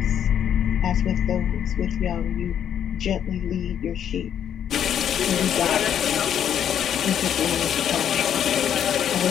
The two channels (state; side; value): quieter; right; 9.3 dB